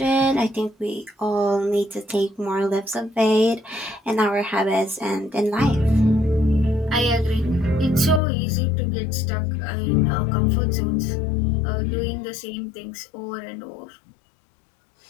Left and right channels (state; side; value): drops out; right; at 8.2 s